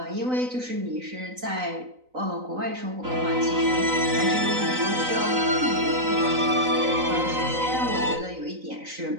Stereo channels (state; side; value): late; left; 3.9 ms